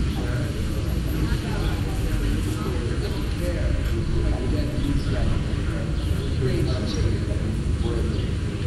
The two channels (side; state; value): both; identical; correlation 1.00